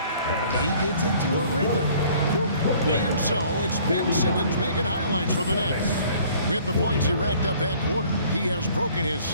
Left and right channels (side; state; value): both; inverted; correlation -0.55